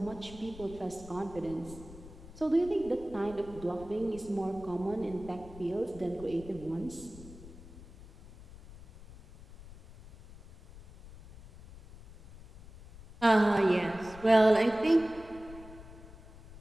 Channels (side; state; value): left; noise; rumble, 18 dB below the sound